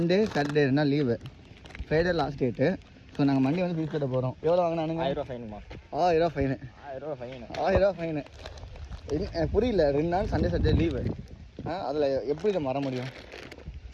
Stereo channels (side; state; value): both; identical; correlation 1.00